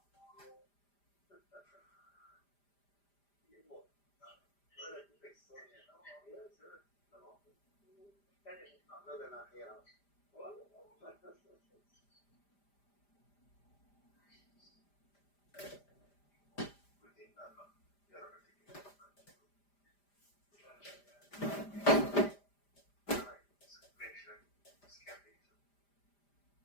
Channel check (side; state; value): right; late; 5.0 ms